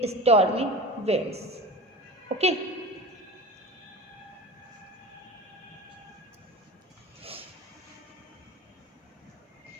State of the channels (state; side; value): normal; both; correlation 0.32